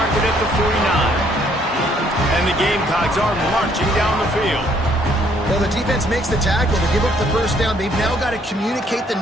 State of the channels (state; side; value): normal; both; correlation 0.66